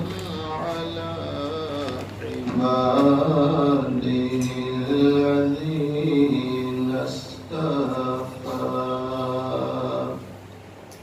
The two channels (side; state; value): both; identical; correlation 1.00